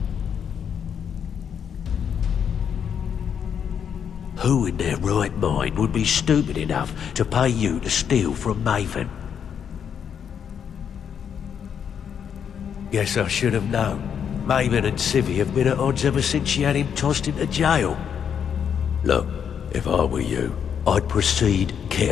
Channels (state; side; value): quieter; right; 7.9 dB